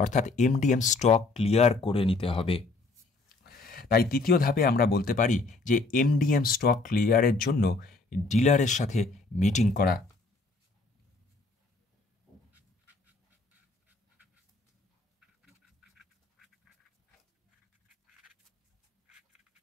অর্থাৎ এমডিএম স্টক ক্লিয়ার করে নিতে হবে। তাই তৃতীয় ধাপে আমরা বলতে পারি যে এমডিএম স্টক ক্লিয়ারের জন্য ডিলারের সাথে মিটিং করা।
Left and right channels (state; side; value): quieter; right; 3.5 dB